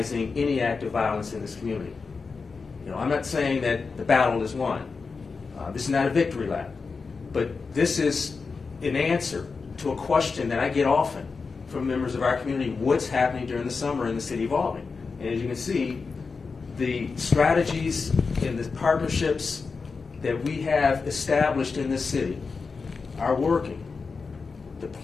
any act of violence in this community. I'm not saying that the battle is won. This is not a victory lap. But this is an answer to a question that I get often from members of our community: what's happening during the summer in the city of Albany? And as you can see, the strategies and the partnerships that we have established in this city are working. The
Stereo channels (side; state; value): right; quieter; 4.7 dB